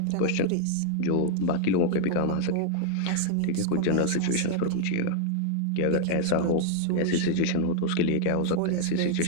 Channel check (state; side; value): different; both; correlation 0.00